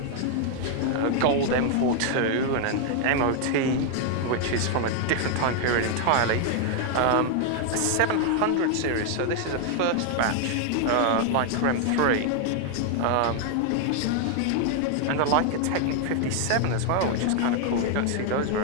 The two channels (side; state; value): both; different; correlation 0.00